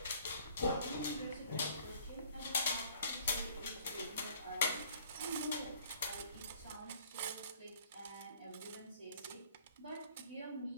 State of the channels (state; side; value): inverted; both; correlation -0.56